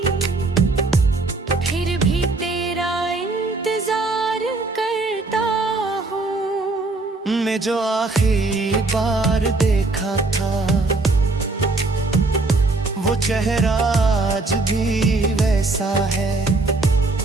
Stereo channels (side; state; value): left; quieter; 3.4 dB